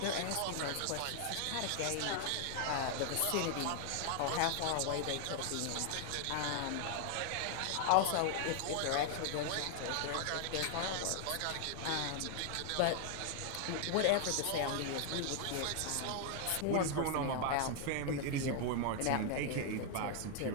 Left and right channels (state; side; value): different; both; correlation 0.00